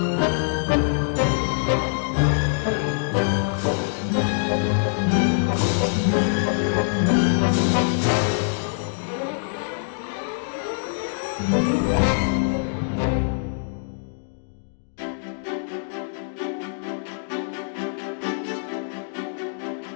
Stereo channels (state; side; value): silent; right; digital silence